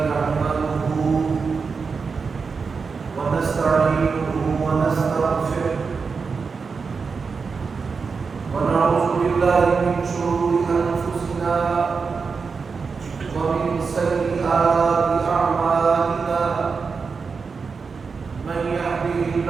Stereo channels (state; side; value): quieter; left; 5.1 dB